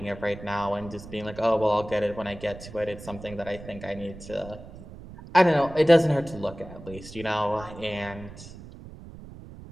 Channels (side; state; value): right; noise; rumble, 15 dB below the sound